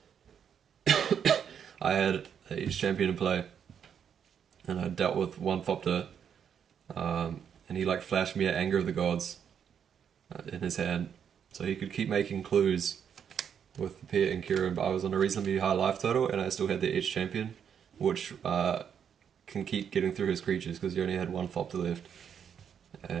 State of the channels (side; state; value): left; quieter; 8.0 dB